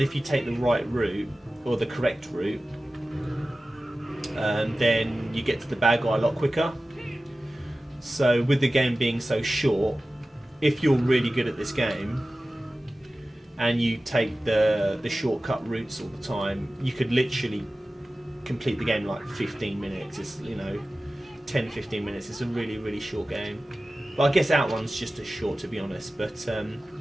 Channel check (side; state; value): both; normal; correlation 0.96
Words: if you take the right route or the correct route, then you get to the bad guy a lot quicker. So with the game being so short, if you're really good at this game, and you take the shortcut routes all the time, you could literally complete the game in like 15 minutes. It's 10-15 minutes. It's a really really short game. But I guess Outrun's just as short, to be honest. But